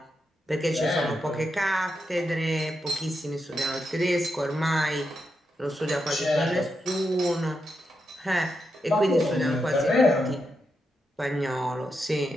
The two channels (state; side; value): normal; both; correlation 0.85